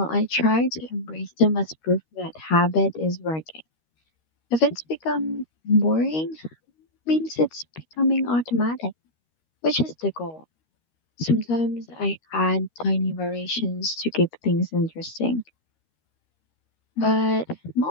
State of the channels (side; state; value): right; late; 13 ms